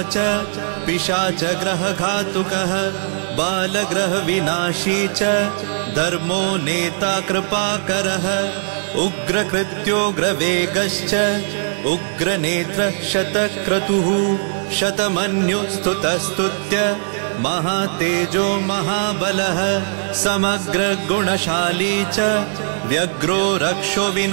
च पिशाचग्रहघातुकः बालग्रहविनाशी च धर्मो नेता कृपाकरः उग्रकृत्योग्रवेगश्च उग्रनेत्र शतक्रतुः शतमन्युस्तुतस्तुत्य महातेजो महाबलः समग्रगुणशाली च व्यग्रो रक्षो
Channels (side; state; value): left; silent; digital silence